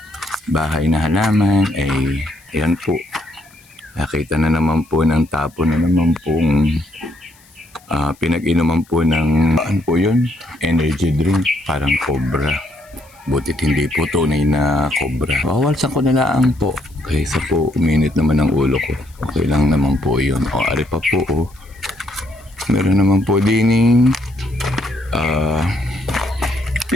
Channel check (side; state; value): left; noise; hiss, 28 dB below the sound